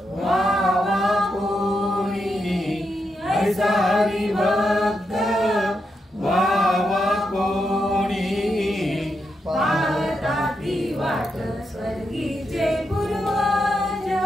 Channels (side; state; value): both; normal; correlation 0.84